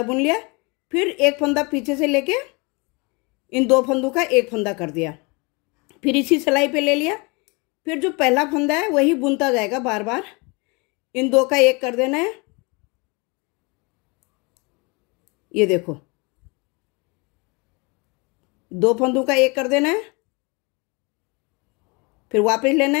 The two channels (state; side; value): quieter; right; 28.8 dB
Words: बुन लिया, फिर एक फंदा पीछे से लेके इन 2 फंदों का एक फंदा कर दिया, फिर इसी सिलाई पे ले लिया। फिर जो पहला फंदा है वही बुनता जाएगा बार बार। इन 2 का 1 कर देना है। ये देखो 2 फंदों का 1 कर देना है, फिर वापस लेना